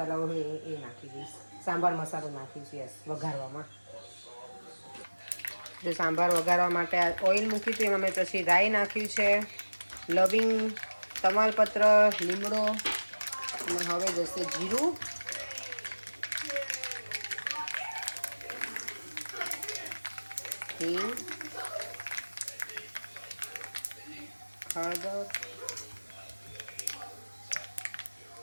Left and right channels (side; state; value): both; inverted; correlation -1.00